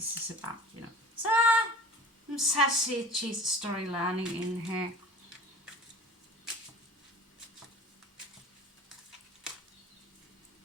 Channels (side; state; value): both; normal; correlation 0.41